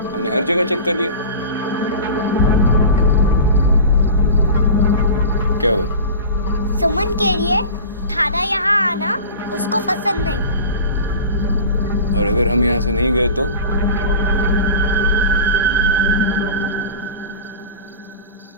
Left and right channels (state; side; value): inverted; both; correlation -0.34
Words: हमने हर जगह चेक कर लिया। क्या हुआ? सुमन कह रही है थाना यहाँ आना उसको पसंद नहीं। और अगर हम यहाँ से नहीं गए तो?